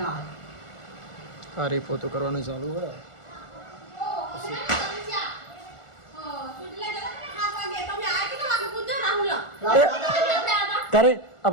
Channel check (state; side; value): late; right; 1.4 ms